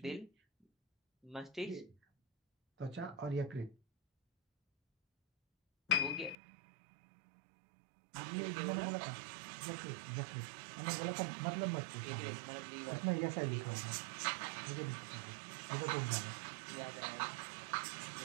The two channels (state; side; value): drops out; left; at 6.4 s